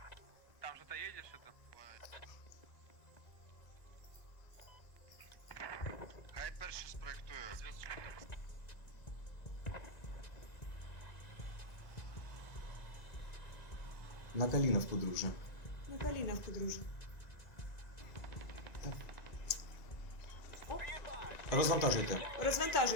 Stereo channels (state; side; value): late; right; 1.9 ms